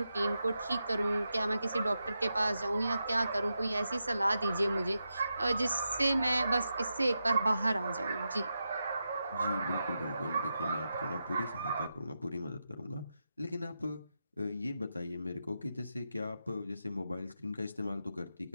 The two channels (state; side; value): inverted; both; correlation -0.88